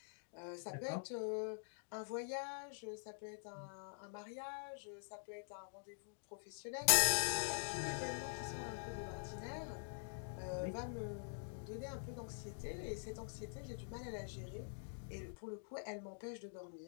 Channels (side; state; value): right; silent; digital silence